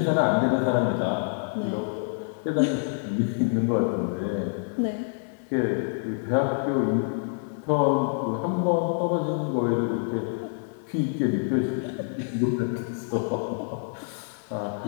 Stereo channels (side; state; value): right; silent; digital silence